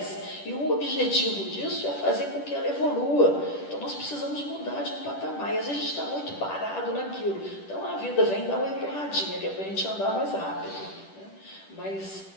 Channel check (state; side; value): late; right; 10 ms